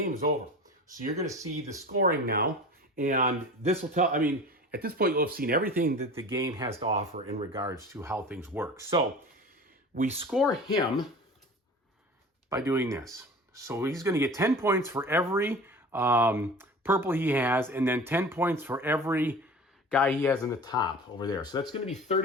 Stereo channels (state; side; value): normal; both; correlation 0.37